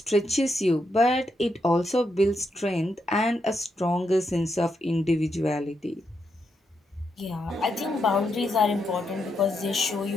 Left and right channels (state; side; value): normal; both; correlation 0.81